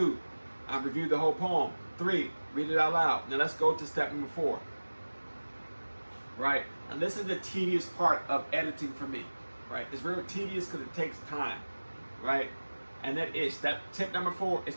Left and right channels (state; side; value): inverted; both; correlation -1.00